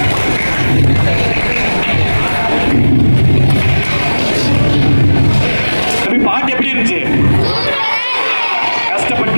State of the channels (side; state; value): both; inverted; correlation -1.00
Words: பாட்டு எப்படி இருந்துச்சு?